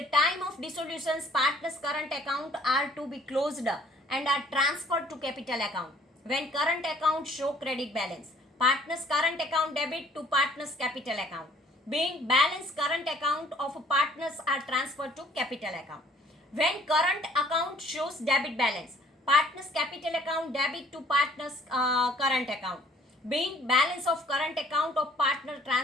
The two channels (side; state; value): both; normal; correlation 0.57